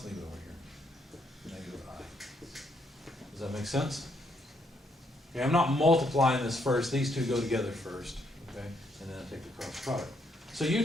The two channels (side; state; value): both; normal; correlation 0.74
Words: leave it over here. Negative I. Does that make sense? Okay, I'm not multiplying this first. These two go together first, okay? And then I take the cross product. So